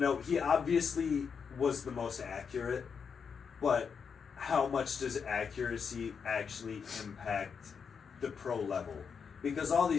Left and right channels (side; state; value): right; quieter; 6.3 dB